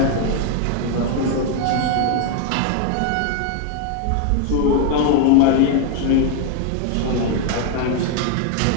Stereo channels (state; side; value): different; both; correlation 0.00